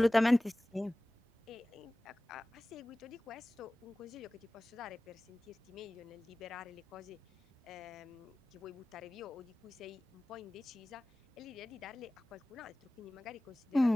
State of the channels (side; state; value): both; normal; correlation 0.98